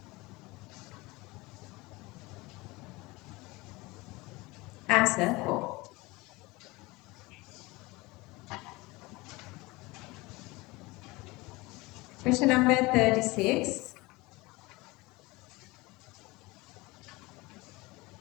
Answer 4. Question number 36.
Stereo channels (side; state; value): right; quieter; 22.6 dB